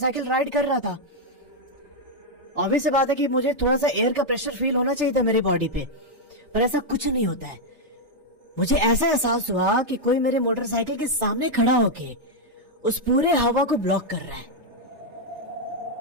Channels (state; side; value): late; left; 3.3 ms